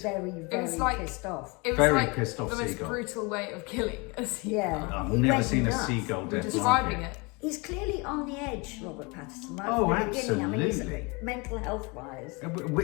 very, very was like- pissed off. It was Very like pissed off the most seagull. brutal way of killing a seagull. Yeah. I've He never went seen a nuts. seagull death. Describing like it. He's clearly on the edge, Robert Pattinson. Right Oh, from the beginning. I mean, absolutely. he's mental health-wise.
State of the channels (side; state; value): right; quieter; 28.5 dB